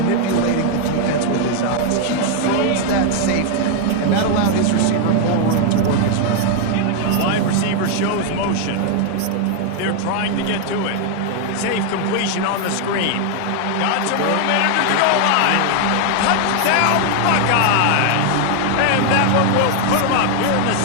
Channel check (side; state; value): both; different; correlation 0.00